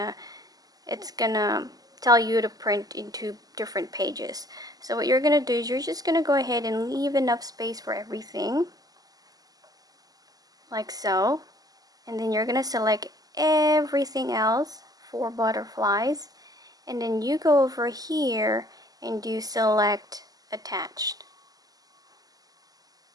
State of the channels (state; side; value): late; left; 0.18 ms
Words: tell you to print into different pages. So what you're gonna do is you're just gonna go ahead and leave enough space for everything, like so, and then you're gonna select everything else for butterflies, and then you go over here and do select attached